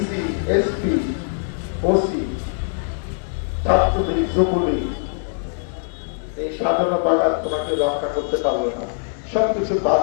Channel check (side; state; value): right; silent; digital silence